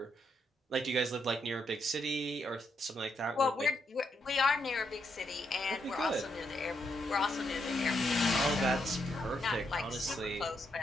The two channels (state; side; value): normal; both; correlation 0.78